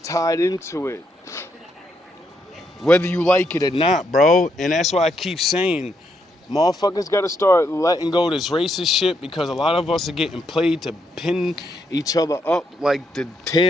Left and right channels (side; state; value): both; normal; correlation 0.77